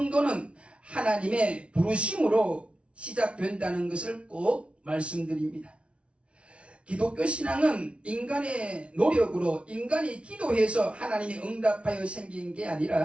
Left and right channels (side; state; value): left; late; 0.060 ms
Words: 하나님의 부르심으로 시작된다는 것을 꼭 말씀드립니다. 기독교 신앙은 인간의 노력으로, 인간이 기도해서 하나님이 응답하여 생긴 게